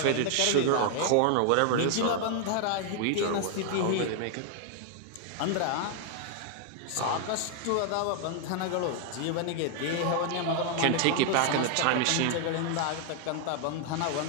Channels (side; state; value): both; different; correlation 0.00